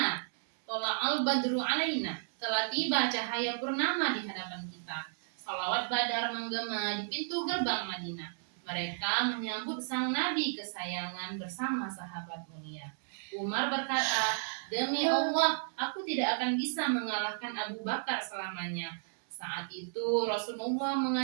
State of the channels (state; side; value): silent; left; 56 dB below the other